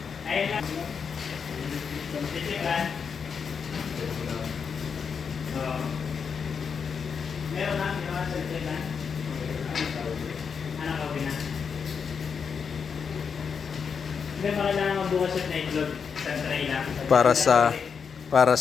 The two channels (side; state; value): right; quieter; 6.3 dB